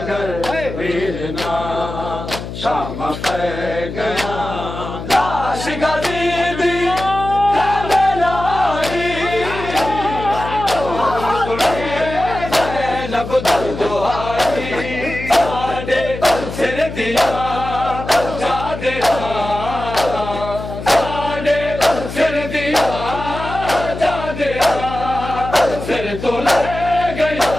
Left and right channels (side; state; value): left; noise; hum, 9 dB below the sound